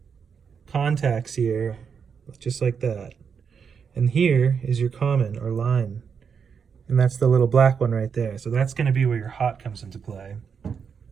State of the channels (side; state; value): left; quieter; 6.5 dB